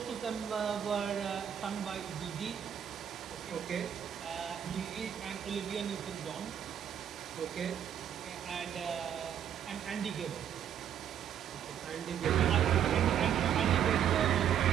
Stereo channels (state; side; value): quieter; left; 9.3 dB